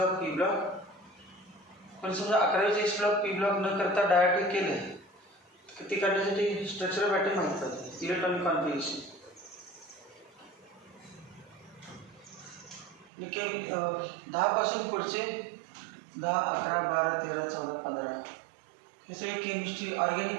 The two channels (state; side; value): drops out; left; at 13.1 s